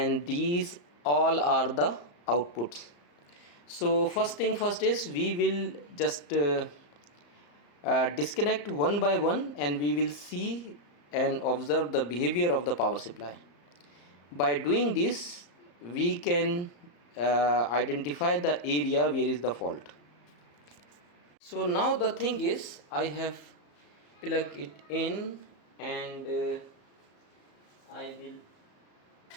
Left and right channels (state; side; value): late; right; 34 ms